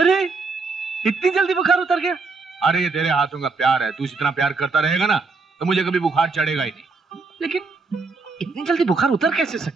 गया? अरे ये तेरे हाथों का प्यार है, तू इतना प्यार करता रहेगा ना तो मुझे कभी बुखार चढ़ेगा ही नहीं। लेकिन इतनी जल्दी बुखार उतर कैसे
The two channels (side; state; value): left; quieter; 4.1 dB